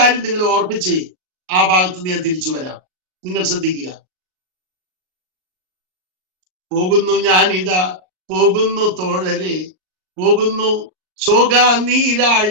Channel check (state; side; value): late; left; 38 ms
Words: നിങ്ങൾ ഓർപ്പിച്ച് ആ ഭാഗത്ത് നിന്ന് ഞാൻ തിരിച്ചു വരാം. നിങ്ങൾ ശ്രദ്ധിക്കുക. പോകുന്നു ഞാനിതാ, പോകുന്നു തോഴരെ, പോകുന്നു ശോക